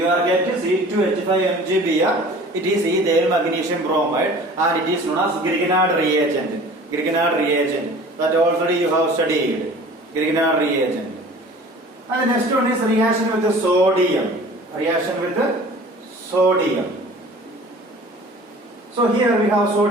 are getting C2H5MgBr. It is ethyl magnesium bromide and it is known as Grignard reagent. Grignard reagent that already you have studied. Grignard reagent. And the next one is reaction with the sodium. Reaction with the sodium. So here we have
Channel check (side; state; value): both; normal; correlation 0.45